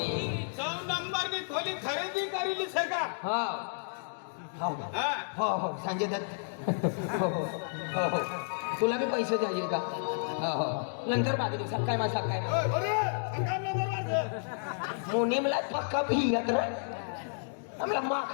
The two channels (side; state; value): right; silent; digital silence